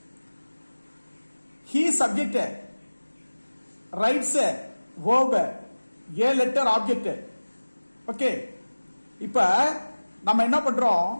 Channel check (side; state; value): both; inverted; correlation -1.00